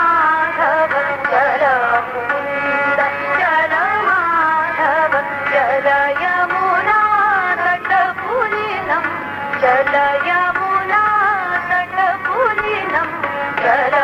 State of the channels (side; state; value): both; identical; correlation 1.00